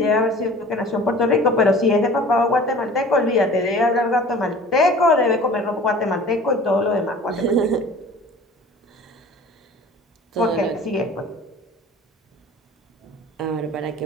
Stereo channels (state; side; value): normal; both; correlation 0.44